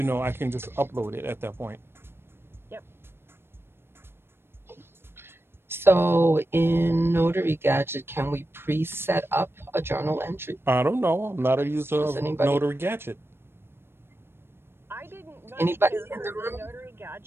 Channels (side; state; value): left; late; 0.11 ms